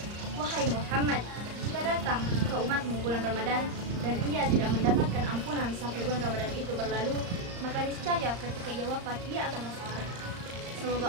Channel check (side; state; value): left; late; 34 ms